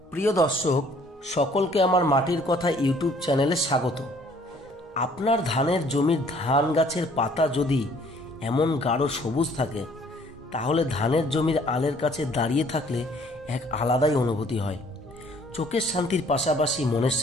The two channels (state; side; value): normal; both; correlation 0.59